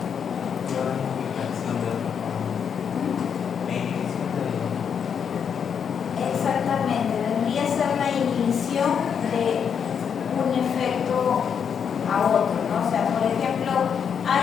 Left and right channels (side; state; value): right; quieter; 7.3 dB